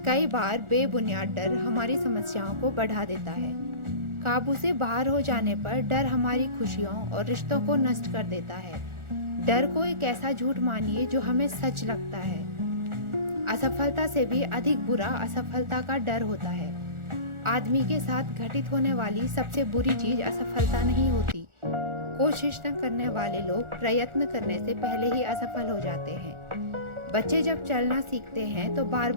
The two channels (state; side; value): late; left; 1.4 ms